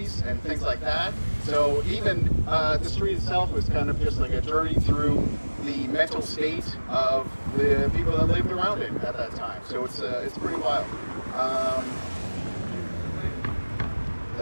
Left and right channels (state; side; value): inverted; both; correlation -1.00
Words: and things like that. So even the street itself was kind of just like a journey through the mental state of the people that lived around it at that time. So it's pretty wild.